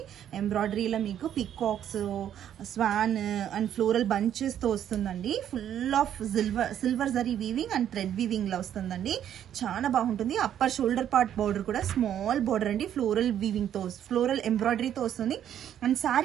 ఎంబ్రాయిడరీలో మీకు పికాక్స్, స్వాన్ అండ్ ఫ్లోరల్ బంచెస్తో వస్తుందండి. Full of silver zari weaving and thread వీవింగ్లో వస్తుందండి. చాలా బాగుంటుంది. అప్పర్ షోల్డర్ పార్ట్ బార్డర్ కూడా స్మాల్ బార్డర్ అండి, ఫ్లోరల్ వీవింగ్తో, ఫ్లోరల్ ఎంబ్రాయిడరీతో వస్తుంది. అండ్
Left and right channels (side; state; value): left; quieter; 10.2 dB